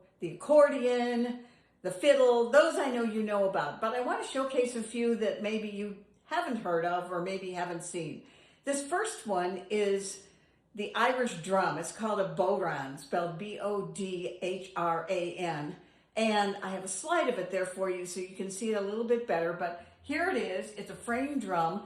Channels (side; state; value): both; identical; correlation 1.00